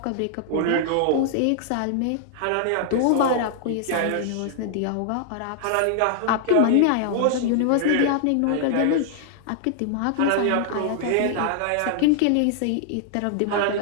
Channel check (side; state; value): both; different; correlation -0.01